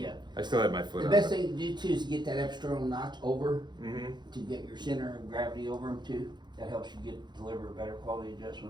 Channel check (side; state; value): left; late; 0.21 ms